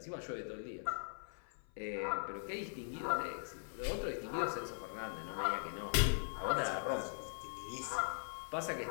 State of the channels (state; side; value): silent; right; 50 dB below the other